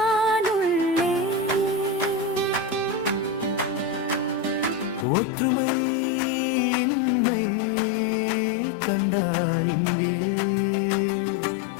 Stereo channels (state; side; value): drops out; right; at 5.1 s